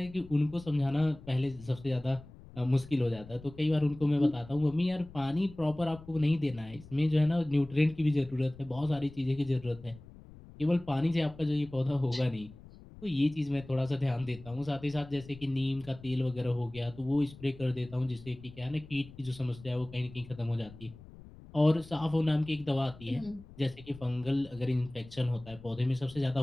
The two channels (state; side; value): noise; left; rumble, 19 dB below the sound